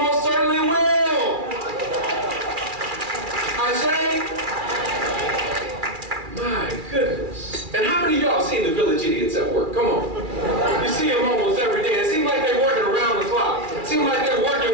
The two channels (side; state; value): left; late; 2.4 ms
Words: certainly will. I say, my goodness. And how many of y'all seen the village idiots at work? Come on. You see them almost every day. It seems like they're working around the clock. It seems like they're